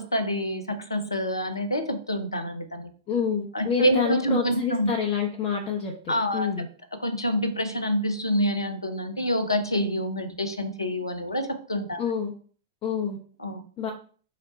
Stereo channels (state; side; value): inverted; both; correlation -0.49